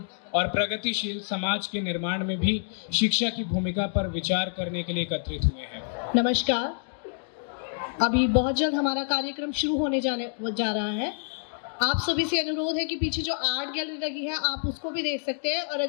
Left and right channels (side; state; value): right; silent; digital silence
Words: और प्रगतिशील समाज के निर्माण में भी शिक्षा की भूमिका पर विचार करने के लिए एकत्रित हुए हैं। नमस्कार। अभी बहुत जल्द हमारा कार्यक्रम शुरू होने जा रहा है। आप सभी से अनुरोध है कि पीछे जो आर्ट गैलरी लगी है आप उसको भी देख सकते हैं, और